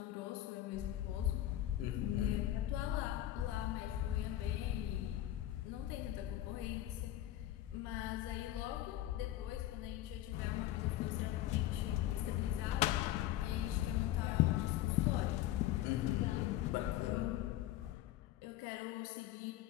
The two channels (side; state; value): right; quieter; 13.7 dB